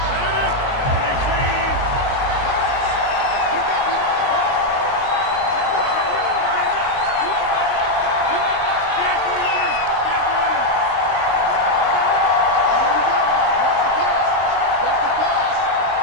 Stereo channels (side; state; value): right; late; 22 ms